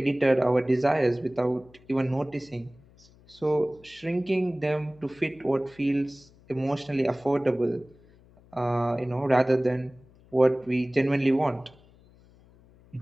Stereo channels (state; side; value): noise; left; hum, 27 dB below the sound